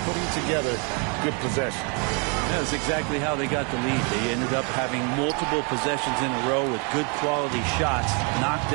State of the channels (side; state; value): left; quieter; 35.6 dB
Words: putting together good possession. That's exactly how they got the lead. They ended up having multiple possessions in a row with good quality shots, knocked